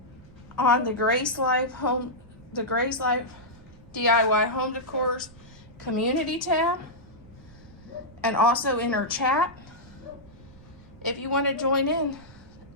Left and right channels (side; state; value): right; noise; rumble, 22 dB below the sound